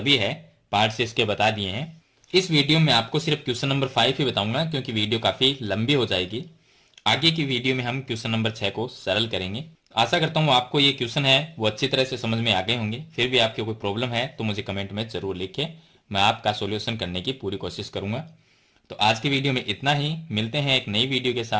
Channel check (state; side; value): identical; both; correlation 1.00